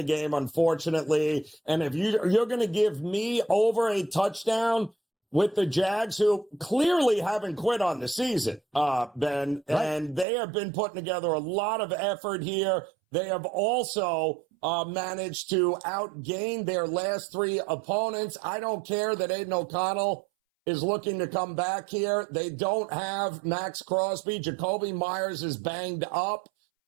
game, unfortunately. And if you're going to give me over a touchdown with the Jags, who clearly haven't quit on the season, Ben, right. And they have been putting together a lot of effort here. They have also managed to outgain their last 3 opponents. I don't care that Aiden O'Connell is looking to come back here. They don't have Max Crosby. Jacoby Myers is banged up.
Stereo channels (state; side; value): drops out; left; at 10.2 s